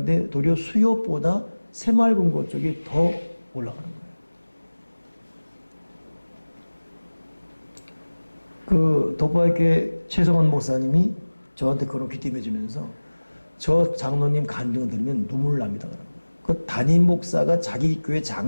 도리어 수요보다 새마을금고 쪽이 더 올라가는 거예요. 그 덕바교회 최성원 목사님이 저한테 그런 귀띔해 주면서 저 장로님 간증을 들으면 눈물 납니다. 그 담임 목사가 자기 교회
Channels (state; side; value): inverted; both; correlation -1.00